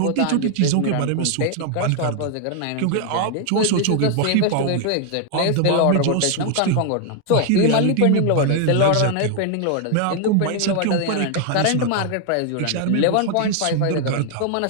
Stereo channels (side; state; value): both; different; correlation 0.00